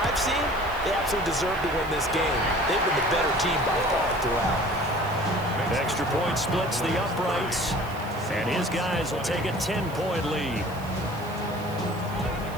I've seen, they absolutely deserve to win this game. They've been the better team by far throughout. Extra point splits the uprights, and his guys will take a 10-point lead.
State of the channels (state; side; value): noise; right; hiss, 20 dB below the sound